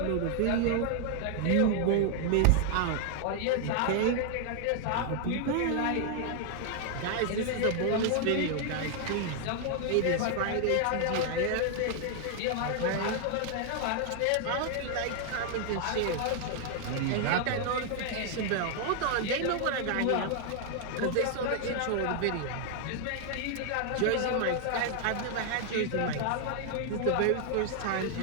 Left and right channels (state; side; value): different; both; correlation 0.00